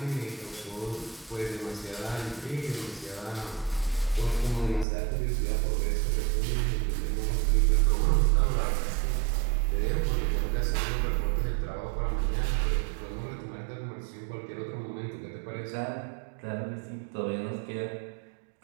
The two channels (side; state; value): left; drops out; at 4.9 s